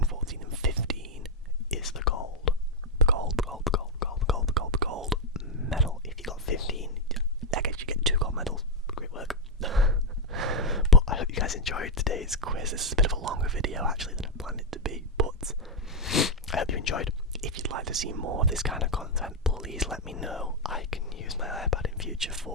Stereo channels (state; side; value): normal; both; correlation 0.03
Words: 14 and 15 is the gold. The gold medal. If you got 15, I guess you get 2 gold medals. Great work. But I hope you guys enjoyed today's quiz. This is a bit of a longer video actually than I planned it to be, but I hope you enjoyed. If you'd like to see more of this kind of content, please let me know. I can use my iPad in future